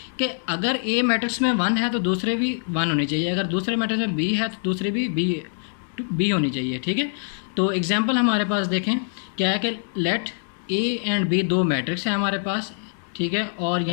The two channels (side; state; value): right; silent; 63 dB below the other